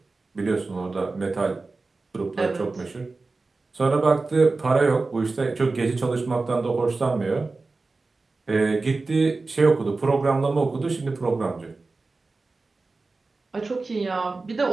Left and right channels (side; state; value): left; quieter; 3.7 dB